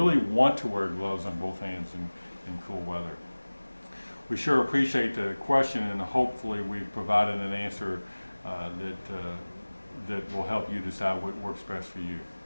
want to wear gloves on both hands in cool weather. We sure appreciate the question, and hopefully we've provided an answer that will help you decide what works best for you.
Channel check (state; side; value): inverted; both; correlation -1.00